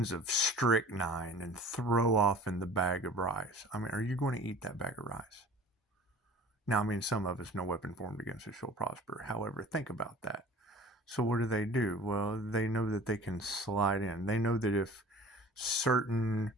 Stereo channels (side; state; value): both; normal; correlation 0.44